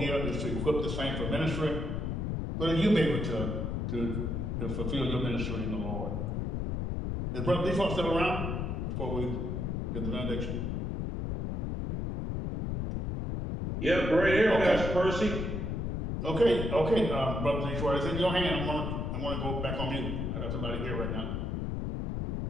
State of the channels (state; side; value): noise; left; rumble, 2 dB below the sound